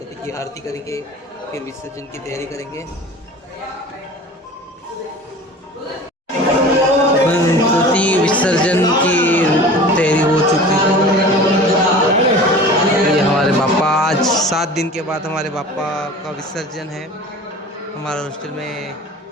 की आरती करेंगे, फिर विसर्जन की तैयारी करेंगे। गणपति विसर्जन की तैयारी हो चुकी है। ये हमारे बापा, आज 7 दिन के बाद हमारे बापा का विसर्जन है। हमारे हॉस्टल में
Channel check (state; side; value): normal; both; correlation 0.39